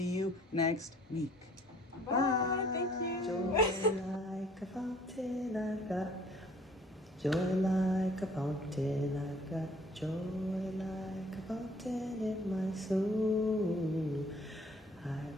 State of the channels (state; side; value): normal; both; correlation 0.56